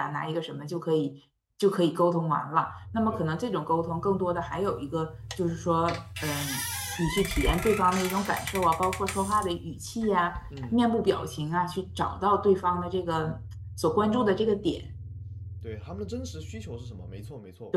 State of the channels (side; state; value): both; identical; correlation 1.00